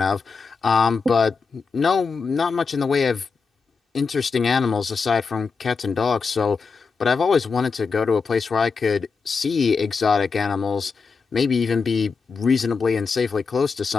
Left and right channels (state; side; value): quieter; right; 5.0 dB